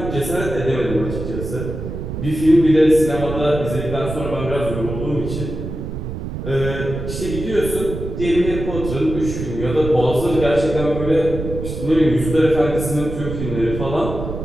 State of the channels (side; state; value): right; noise; rumble, 6 dB below the sound